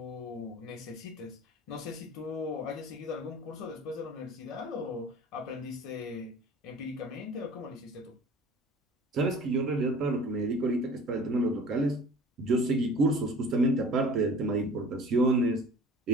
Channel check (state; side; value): normal; both; correlation 0.45